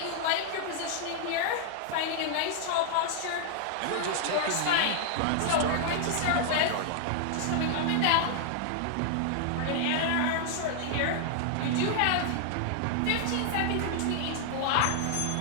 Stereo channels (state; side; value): different; both; correlation -0.01